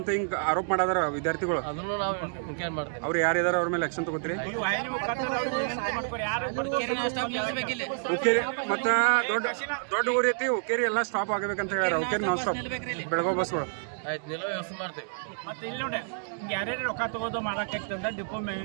ಅಂತ ಹಿಂಗ ಆರೋಪ ಮಾಡಾದಾರ ವಿದ್ಯಾರ್ಥಿಗಳು. ಅದನ್ನು ನಾವು ಎನ್ಕ್ವೈರಿ ಮಾಡ್ತೀವಿ. ಅವ್ರು ಯಾರಿದಾರ ಅವ್ರ ಮೇಲೆ ಆಕ್ಷನ್ ತಗೋತೀರಿ? ಉಕ್ಕೇರಿ ಮತ್ತ ದೊಡ್ಡ ಊರಿ ಐತಿ, ಉಕ್ಕೇರಿ ಎಲ್ಲ ಸ್ಟಾಪ್ ಆಗಬೇಕಂತ ಹೇಳ್ಯಾರ. ಉಕ್ಕೇರಿ ನಾನ್ ಸ್ಟಾಪ್ ಬೆಳಗಾವ್ ಬಸ್ಗಳು. ಆಯ್ತು, ನಿಲ್ಲೋ ವ್ಯವಸ್ಥೆ ಮಾಡ್ತೇವೆ. ಮತ್ತೆ ಇಲ್ಲಿ ನೋಡಿ ಯಾರ್ಯಾರು ರೊಕ್ಕ ತಗೋದು ಮಾಡಕ್ಕಾಗ್ತಂದ್ರೆ ಡಿಪೋ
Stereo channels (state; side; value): silent; left; digital silence